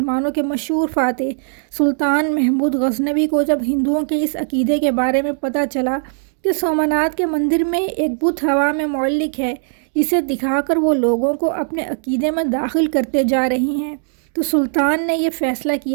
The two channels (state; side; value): silent; left; digital silence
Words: کے مشہور فاتح سلطان محمود غزنوی کو جب ہندوؤں کے اس عقیدے کے بارے میں پتہ چلا کہ سومناتھ کے مندر میں ایک بت ہوا میں معلق ہے جسے دکھا کر وہ لوگوں کو اپنے عقیدے میں داخل کرتے جا رہی ہیں، تو سلطان نے یہ فیصلہ